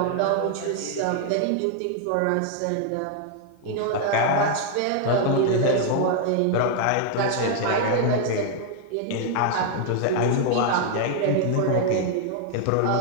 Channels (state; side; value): different; both; correlation 0.00